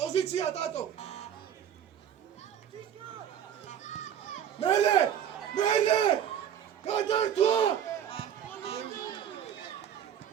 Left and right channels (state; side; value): quieter; left; 9.5 dB